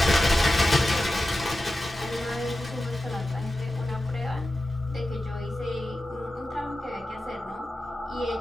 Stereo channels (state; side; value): normal; both; correlation 0.93